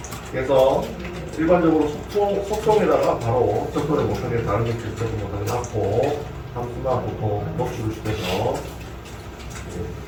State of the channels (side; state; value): both; identical; correlation 1.00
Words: 그래서 일반적으로 속성에다가 바로 접근을 못하게 다른 기체를 접근 못하게 놨고 함수나 보통 노출을 시켜서